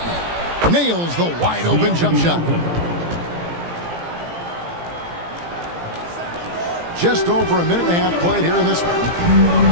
Nails the wide open jump shot. Just over a minute and a half played here in this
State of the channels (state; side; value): late; left; 17 ms